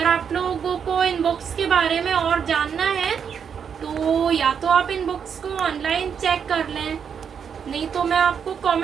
आप लोगों को इन बुक्स के बारे में और जानना है तो या तो आप इन बुक्स को ऑनलाइन चेक कर लें, नहीं तो मैं आपको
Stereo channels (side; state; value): left; quieter; 7.2 dB